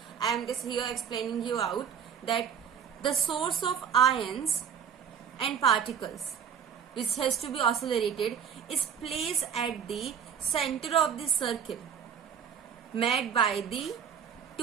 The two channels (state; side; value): quieter; left; 7.7 dB